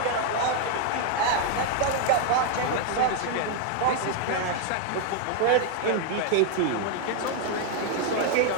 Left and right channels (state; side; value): different; both; correlation 0.00